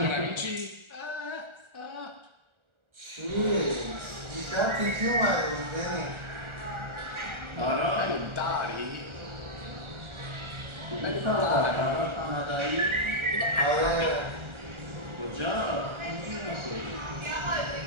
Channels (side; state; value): left; late; 1.4 ms